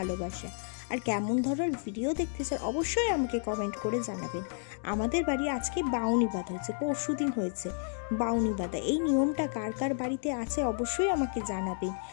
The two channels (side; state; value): right; silent; digital silence